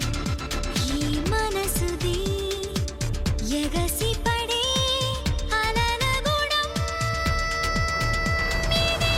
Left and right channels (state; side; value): identical; both; correlation 1.00